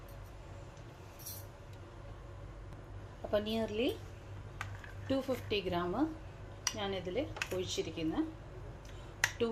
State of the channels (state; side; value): identical; both; correlation 1.00